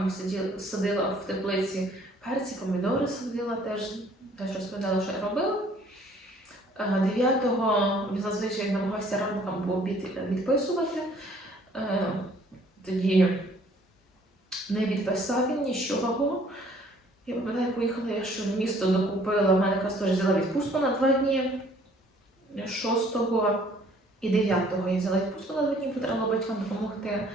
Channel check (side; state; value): both; normal; correlation 0.58